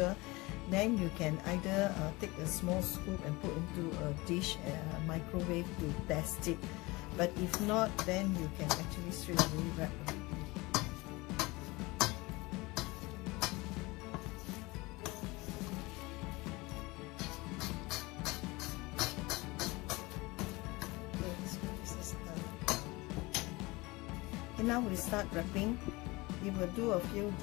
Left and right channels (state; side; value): quieter; right; 23.0 dB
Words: then you can either take a small scoop and put into a dish, microwave to test it. But if not, then you can actually straight away wrap already. Okay, so this is done. Okay, now we start wrapping. We will do a few